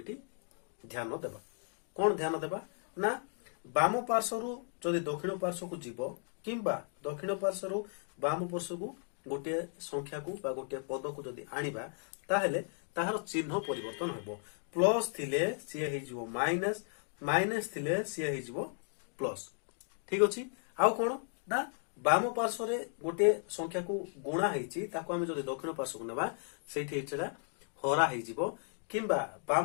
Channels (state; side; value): silent; right; 54 dB below the other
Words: ध्यान देबा कोन ध्यान देबा ना वाम पार्श्व रु जदि दक्षिण पार्श्व को जीवो किंबा दक्षिण पार्श्व रु वाम पार्श्व को गोटे संख्या को बा गोटे पद को जदि आनिबा ताहेले ताहार चिन्ह परिवर्तन हेबो प्लस थिले सी हे जिवो माइनस माइनस थिले सी हे जिवो प्लस ठीक अछि आउ कोन ना वाम पार्श्व रे गोटे संख्या को गुणा हेछि ताको हमें जदि दक्षिण पार्श्व को नेबा सेठी हेछला हरा हे जिवो किंबा